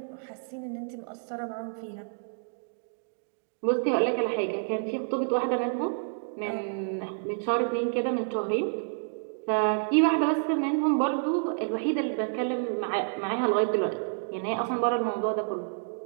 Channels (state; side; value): silent; left; digital silence